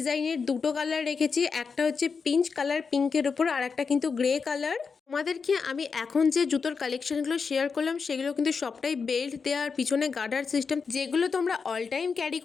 দুটো কালার রেখেছি। একটা হচ্ছে পিঙ্ক কালার, পিঙ্কের উপর, আর একটা কিন্তু গ্রে কালার। তোমাদেরকে আমি এখন যে জুতোর কালেকশনগুলো শেয়ার করলাম, সেগুলো কিন্তু সবটাই বেল্ট দেওয়ার, পিছনে গার্ডার সিস্টেম, যেগুলো তোমরা অল টাইম ক্যারি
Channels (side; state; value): right; quieter; 5.3 dB